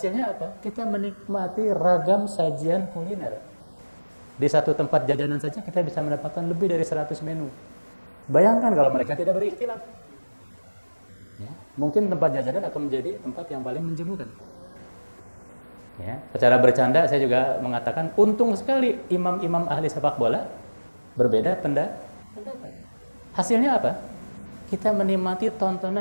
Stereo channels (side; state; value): both; inverted; correlation -1.00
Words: apa? Kita menikmati ragam sajian kuliner. Di satu tempat jajanan saja kita bisa mendapatkan lebih dari 100 menu. Bayangkan kalau mereka tidak berikhtilaf, ya. Mungkin tempat jajanan akan menjadi tempat yang paling menjemukan. Ya, secara bercanda saya juga mengatakan untung sekali imam-imam ahli sepak bola berbeda pendapat. Hasilnya apa? Kita menikmati